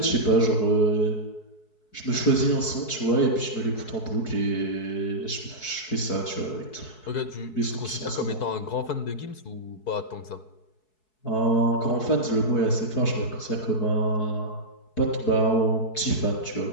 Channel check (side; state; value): right; late; 4.7 ms